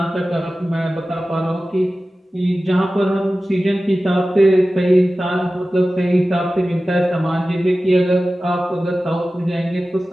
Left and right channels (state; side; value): normal; both; correlation 0.95